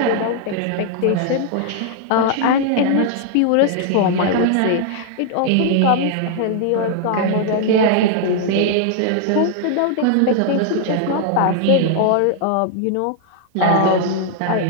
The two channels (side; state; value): both; different; correlation 0.00